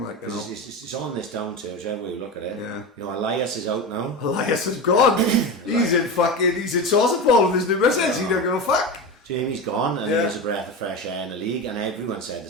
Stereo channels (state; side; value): normal; both; correlation 0.22